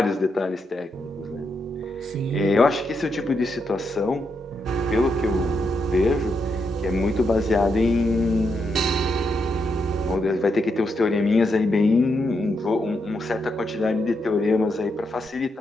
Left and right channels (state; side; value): normal; both; correlation 0.82